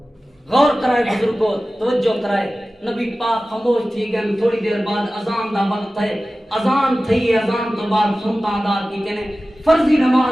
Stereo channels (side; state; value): both; normal; correlation 0.96